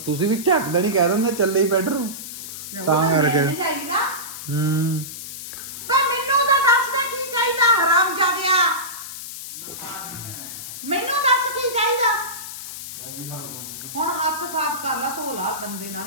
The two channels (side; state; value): left; noise; hiss, 10 dB below the sound